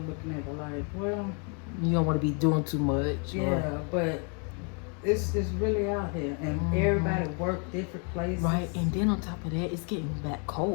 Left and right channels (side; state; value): right; quieter; 37.6 dB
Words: looking at it like, well, you don't want to be doing too much. Yeah, but it's really out here, and everybody work different places. Right, and then on top of that, it's getting back